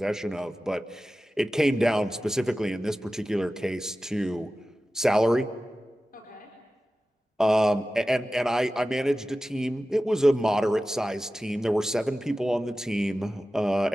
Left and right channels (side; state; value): both; normal; correlation 0.95